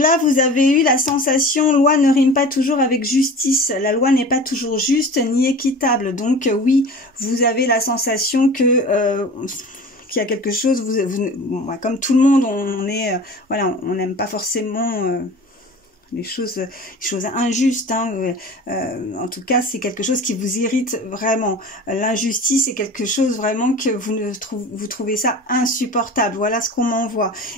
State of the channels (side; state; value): both; normal; correlation 0.38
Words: vous avez eu la sensation, loi ne rime pas toujours avec justice. La loi n'est pas toujours juste ni équitable. Donc oui, vous avez la sensation que qu'il y a quelque chose, comme tout le monde, on est, voilà, on n'aime pas forcément les choses injustes, hein. En tout cas c'est quelque chose qui vous irrite vraiment, l'injustice est quelque chose vraiment que vous trouvez ça insupportable, voilà ce qu'on m'envoie,